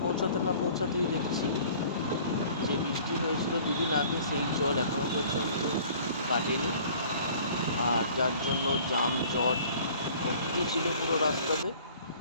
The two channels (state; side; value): inverted; both; correlation -0.50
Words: পৌঁছাতে না পৌঁছাতেই দেখছি যে বৃষ্টি হয়েছিল দুদিন আগে, সেই জল এখনও পর্যন্ত কাটেনি, আর যার জন্য জাম জট ভর্তি ছিল পুরো রাস্তাতে।